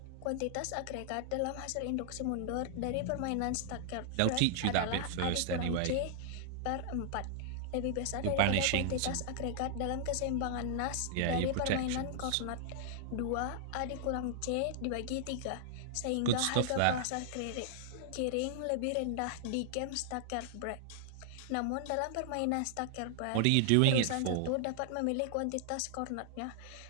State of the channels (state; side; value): different; both; correlation -0.01